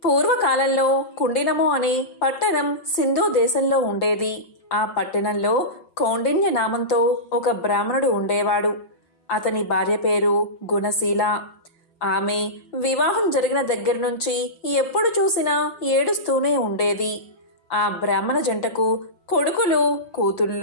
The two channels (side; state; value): right; late; 6.0 ms